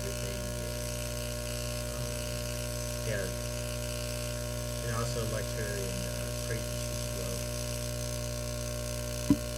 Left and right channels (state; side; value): identical; both; correlation 1.00